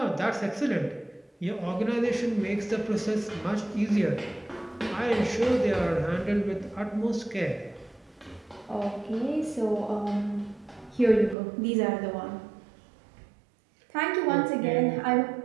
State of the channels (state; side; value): drops out; left; at 11.4 s